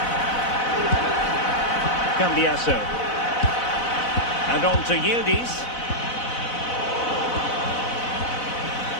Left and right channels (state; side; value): late; right; 4.0 ms